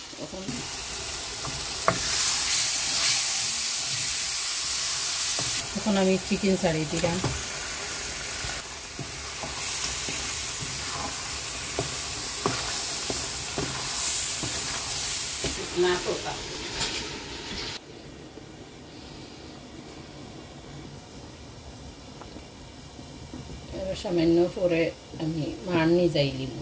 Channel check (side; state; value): both; identical; correlation 1.00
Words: এখন আমি চিকেন ছাড়িয়ে দিলাম না তোতা সামান্য পরে আমি মারনি যাইলিম